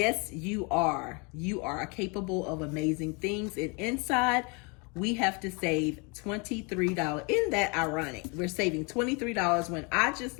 you are. You are capable of amazing things. And inside, we have to save $23. Isn't that ironic? We're saving $23 when I just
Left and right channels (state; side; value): quieter; right; 31.5 dB